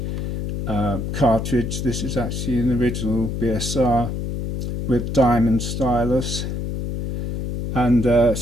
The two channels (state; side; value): noise; left; hum, 3 dB below the sound